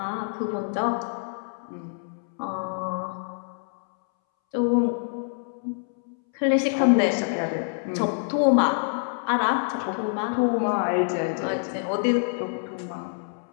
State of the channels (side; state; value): right; silent; 61 dB below the other